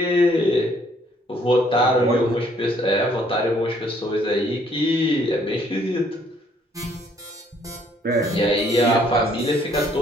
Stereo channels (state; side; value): normal; both; correlation 0.64